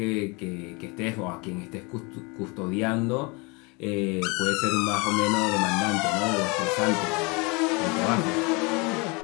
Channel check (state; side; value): quieter; right; 28.5 dB